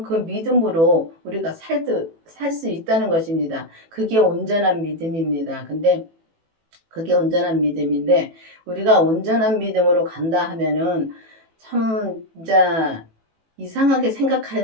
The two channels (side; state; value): left; late; 18 ms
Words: 그 믿음으로 우리가 살 수 있다는 것입니다. 그게 온전한 믿음입니다. 근데 그게 온전한 믿음인데 우리가 온전한 믿음으로 간다 하면은 참 진짜 이상하게